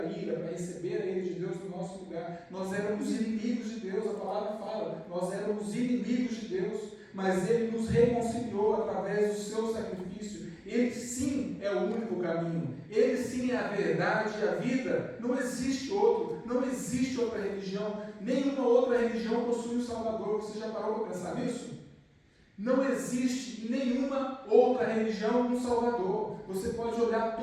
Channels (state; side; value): identical; both; correlation 1.00